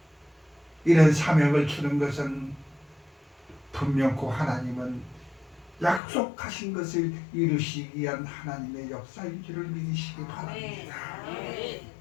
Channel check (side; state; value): right; drops out; at 6.0 s